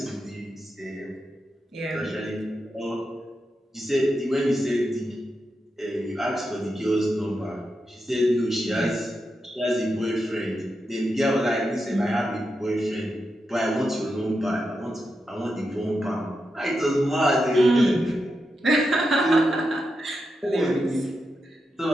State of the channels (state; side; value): normal; both; correlation 0.87